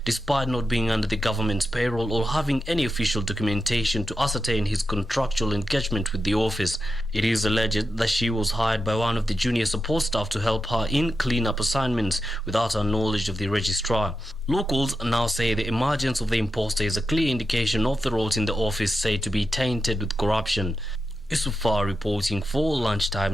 despite not being under the government's payroll or having any official documentation to ascertain his contractual engagement with the office. It is alleged that she was hired by one of the junior support staff to help her in clean-up assignments without her knowledge of the registrar. Locals now say the emergence of the imposter is a clear indication of the roles in the office said to be tainted with corruption. Isufar reporting for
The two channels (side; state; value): left; noise; hum, 26 dB below the sound